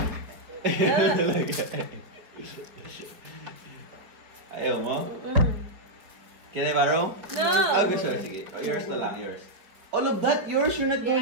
Ayaw mo? Can I borrow? No! Oh, gusto. Sige. Yours na lang, yours. All of that, yours? You're not going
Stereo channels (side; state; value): left; late; 4.6 ms